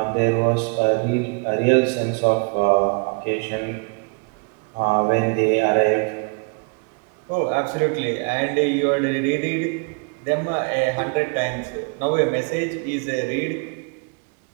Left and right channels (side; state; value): left; quieter; 33.1 dB